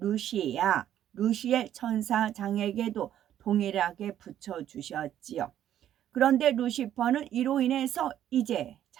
루시엘 천사장에게도 동일하게 붙여주셨지요. 그런데 루시퍼는 이로 인해서 이제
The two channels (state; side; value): quieter; left; 11.1 dB